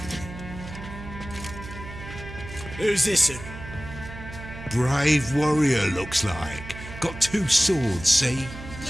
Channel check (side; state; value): right; noise; hum, 12 dB below the sound